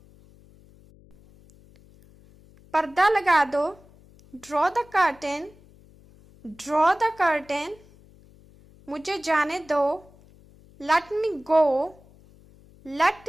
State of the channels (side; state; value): left; noise; hum, 26 dB below the sound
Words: पर्दा लगा दो। Draw the curtain. Draw the curtain. मुझे जाने दो। लेट मी गो। लेट